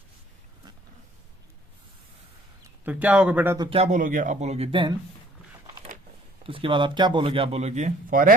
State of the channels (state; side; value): normal; both; correlation 0.57